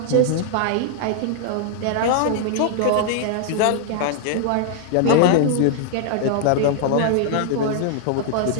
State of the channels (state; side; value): different; both; correlation 0.00